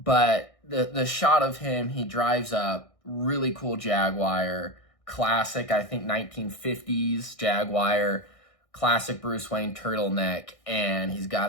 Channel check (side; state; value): right; late; 1.6 ms